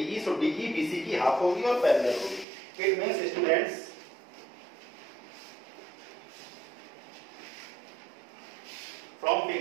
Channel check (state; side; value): drops out; left; at 2.5 s